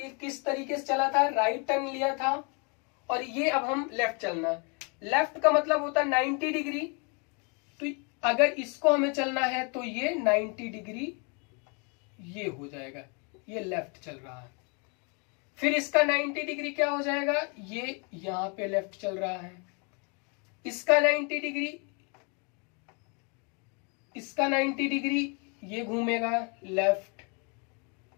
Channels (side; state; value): right; quieter; 34.5 dB